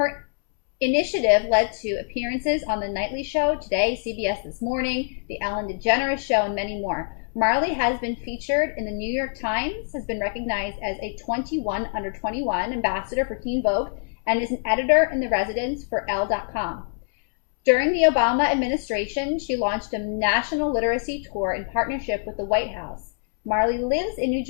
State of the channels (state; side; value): silent; right; 62 dB below the other